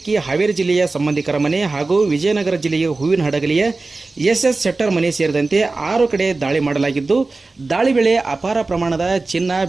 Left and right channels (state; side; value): quieter; left; 3.5 dB